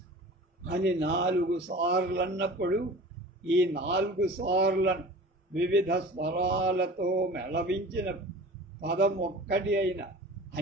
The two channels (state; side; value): normal; both; correlation 0.40